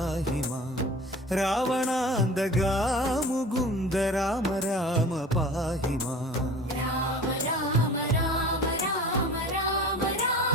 മാം. രാവണാന്തകാ മുകുന്ദ രാമ രാമ പാഹി മാം. രാമ രാമ രാമ രാമ രാമ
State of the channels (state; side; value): normal; both; correlation 0.40